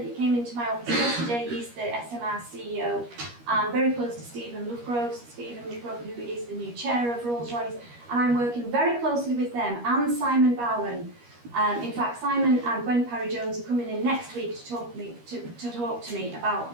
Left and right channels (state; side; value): late; left; 13 ms